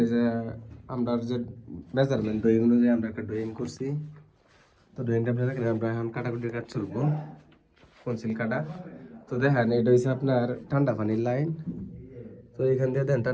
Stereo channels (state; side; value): identical; both; correlation 1.00